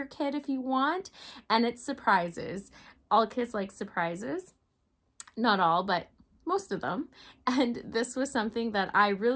kid if you want, and it's surprises. All kids like surprises. Not all, but most of them. And this was something that I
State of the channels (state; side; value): identical; both; correlation 1.00